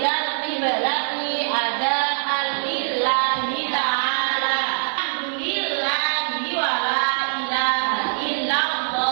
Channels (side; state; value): left; silent; digital silence